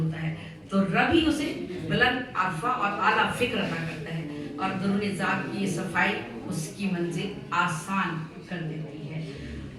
ہے, تو رب ہی اسے بلند عرفہ اور اعلیٰ فکر عطا کرتا ہے, اور درون ذات کی یہ صفائی اس کی منزل آسان کر دیتی ہے.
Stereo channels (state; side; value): identical; both; correlation 1.00